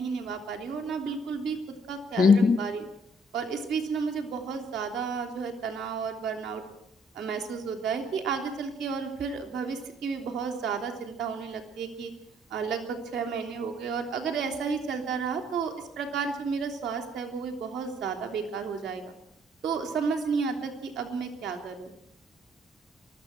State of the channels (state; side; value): normal; both; correlation 0.64